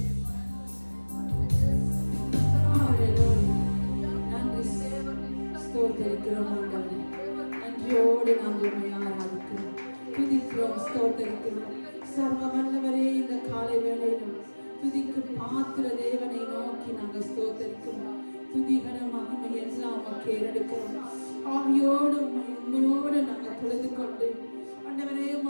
நன்றி ஸ்தோத்தரிக்கிறோம் ஆண்டவரே. நன்றியோடு நாங்கள் உம்மை ஆராதிக்கிறோம், துதிக்கிறோம், ஸ்தோத்தரிக்கிறோம். சர்வ வல்லவரே, இந்த காலை வேளையிலும் துதிக்கு பாத்திர தேவனை நோக்கி நாங்கள் ஸ்தோத்தரிக்கிறோம். துதிகர மகிமை எல்லாம் உமக்கு ஏறெடுக்கிறோம். ஆவியோடு உண்மையோடு நாங்கள் தொழுது கொண்டு ஆண்டவரே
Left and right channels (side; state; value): both; inverted; correlation -1.00